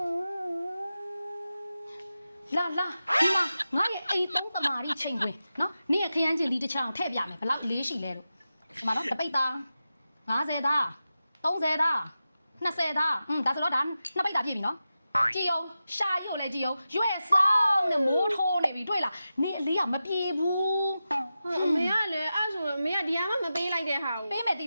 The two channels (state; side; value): inverted; both; correlation -0.92